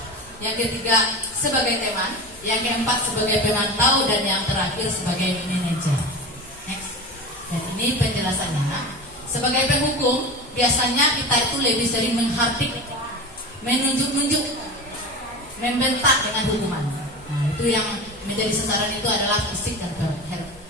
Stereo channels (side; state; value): both; normal; correlation 0.28